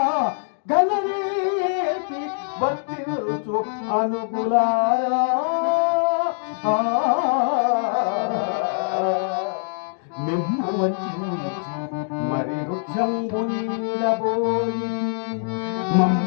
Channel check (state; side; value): silent; right; digital silence